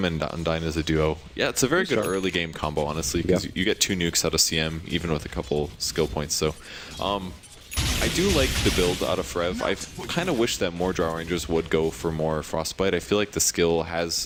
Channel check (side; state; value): both; identical; correlation 1.00